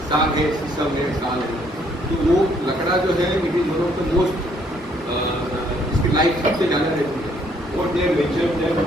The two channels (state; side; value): normal; both; correlation 0.66